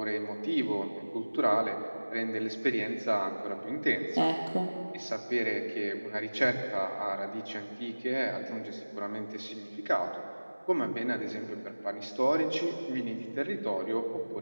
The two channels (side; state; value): both; inverted; correlation -1.00